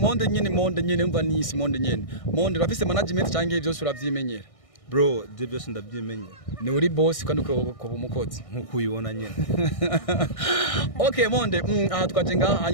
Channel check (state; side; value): late; right; 1.6 ms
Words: nyene umva nisi Monde nyene. Monde urafise management canke byose uravyimenyera? Bro, je byose ndavyimenyera. Ni uri boss kandi uko umukozi nkuko uyibona nyene. Okay, Monde, aha twaje ngaha